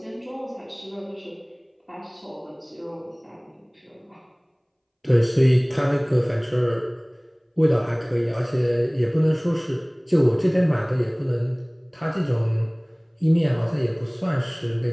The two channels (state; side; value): identical; both; correlation 1.00